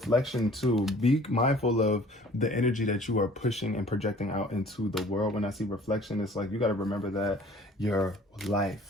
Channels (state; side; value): normal; both; correlation 0.52